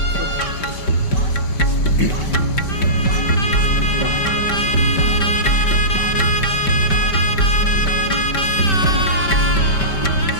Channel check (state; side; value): late; right; 5.2 ms